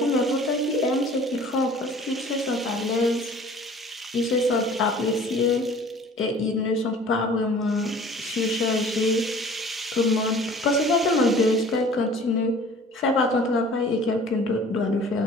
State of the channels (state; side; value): normal; both; correlation 0.48